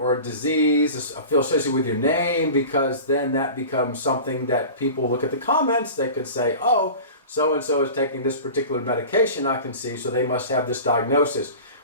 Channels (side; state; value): both; inverted; correlation -0.36